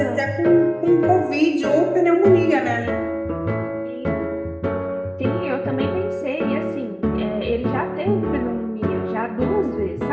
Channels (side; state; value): both; identical; correlation 1.00